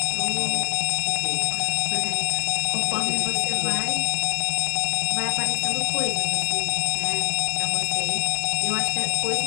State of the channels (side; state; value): right; silent; 61 dB below the other